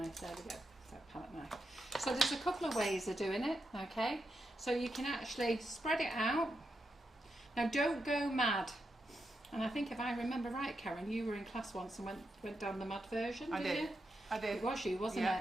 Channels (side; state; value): both; normal; correlation 0.85